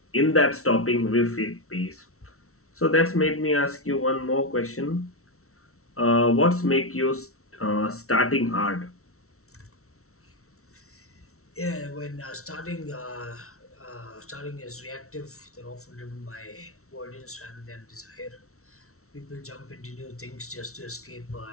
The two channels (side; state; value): right; late; 0.63 ms